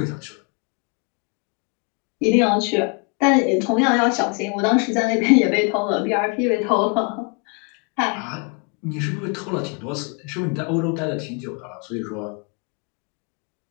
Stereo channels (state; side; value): quieter; right; 34.5 dB